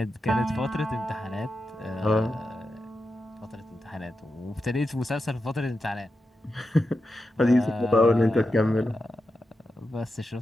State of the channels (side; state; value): both; normal; correlation 0.89